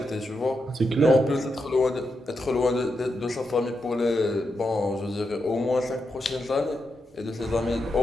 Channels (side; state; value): both; normal; correlation 0.85